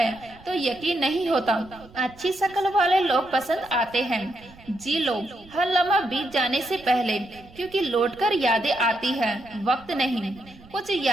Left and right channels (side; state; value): right; noise; rumble, 23 dB below the sound